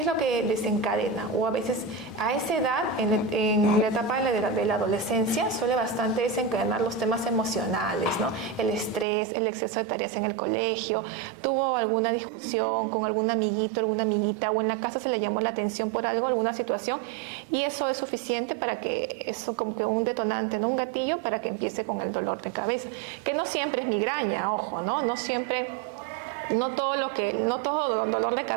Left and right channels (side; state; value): left; drops out; at 9.1 s